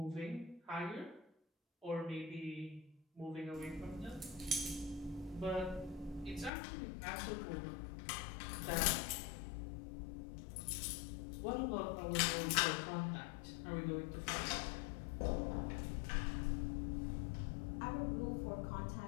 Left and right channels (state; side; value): drops out; right; at 6.5 s